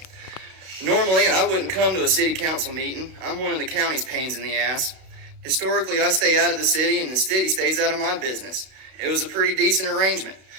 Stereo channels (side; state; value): left; late; 32 ms